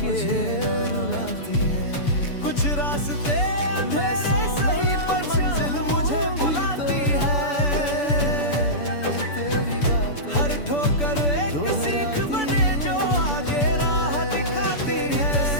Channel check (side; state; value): right; late; 6.9 ms